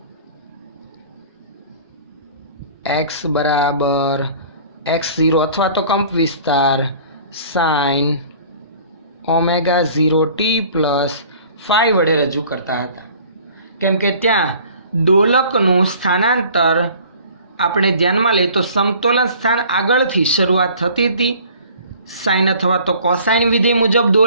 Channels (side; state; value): both; inverted; correlation -0.49